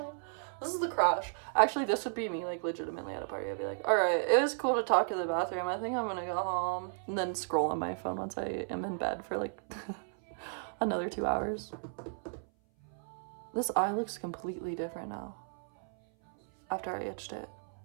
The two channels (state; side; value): silent; left; 55 dB below the other